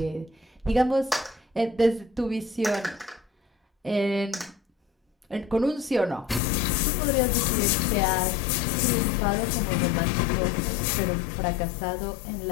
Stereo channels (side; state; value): right; drops out; at 6.4 s